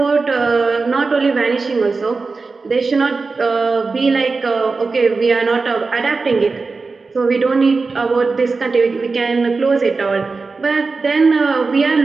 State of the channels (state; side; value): quieter; left; 4.1 dB